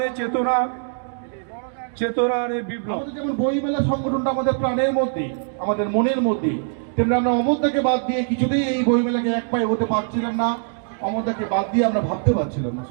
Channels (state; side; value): silent; left; digital silence